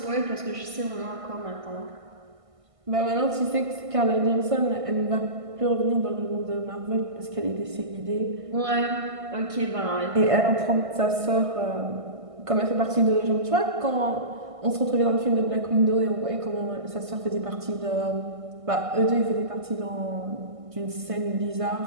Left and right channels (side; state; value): left; late; 1.6 ms